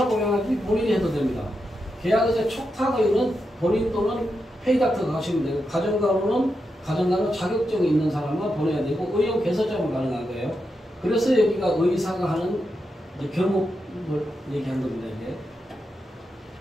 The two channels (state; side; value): normal; both; correlation 0.86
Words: 고용하지 본인이 해도 됩니다. 계약의사 촉탁의원은 본인 또는 페이닥터가 하시면 되고 가정간호는 가정간호 자격증이 있는 사람만 보내야 되고 의원 개설자만 가능한 거예요. 그래서 여기가 의사가 하는 경험을 얘기한 겁니다. 이게.